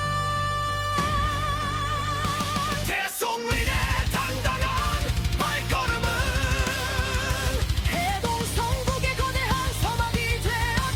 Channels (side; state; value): both; identical; correlation 1.00